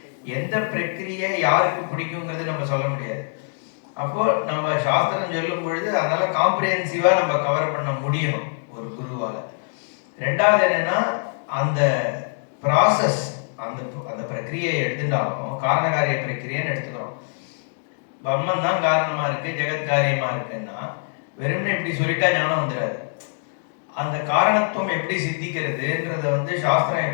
எந்த பிரக்கிரியை யாருக்கு பிடிக்குங்கிறது நம்ம சொல்ல முடியாது. அப்போ நம்ம சாஸ்திரம் சொல்லும் பொழுது அதனால காம்ப்ரிஹென்சிவா நம்ம கவர் பண்ண முடியணும் ஒரு குருவால. ரெண்டாவது என்னன்னா, அந்த ப்ராசஸ், அந்த அந்த பிரக்கிரியை எடுத்துட்டாலும் காரணகாரிய பிரக்கிரியன்னு எடுத்துக்கிறோம். பிரம்மன் தான் காரணமா இருக்கு, ஜெகத் காரியமா இருக்குன்னா வெறும்னே இப்படி சொல்லிட்டா ஞானம் வந்துடாது. அந்த காரணத்துவம் எப்படி சித்திக்கிறதுன்றத வந்து சாஸ்திரம்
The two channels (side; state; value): right; silent; 63 dB below the other